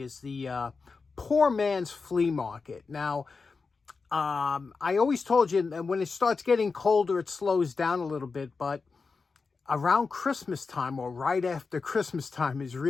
is the poor man's flea market. Now, I always told you that when it starts getting colder, it slows down a little bit, but around Christmas time or right after Christmas time is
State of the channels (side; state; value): right; quieter; 4.6 dB